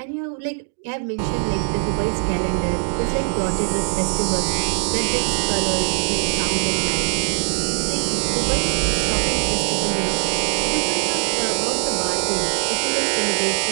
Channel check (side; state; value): left; silent; digital silence